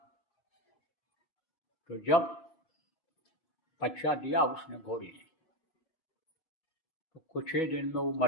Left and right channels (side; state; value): right; late; 5.5 ms